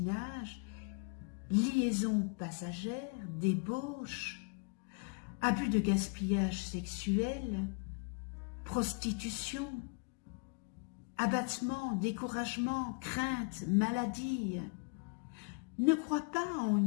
liaison passagère, débauche, abus de gaspillage sexuel, prostitution, abattement, découragement, crainte, maladie. Ne crois pas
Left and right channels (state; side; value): quieter; right; 38.4 dB